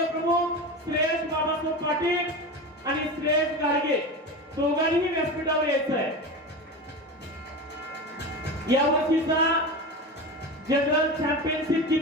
श्रेयश बाबासाहेब पाटील आणि श्रेयश गाडगे दोघांनीही व्यासपीठावर यायचं आहे. या वर्षीचा जनरल चॅम्पियनशिप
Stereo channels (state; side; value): normal; both; correlation 0.26